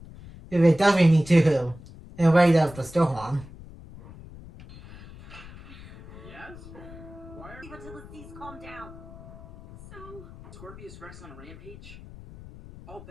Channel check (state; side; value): noise; left; rumble, 17 dB below the sound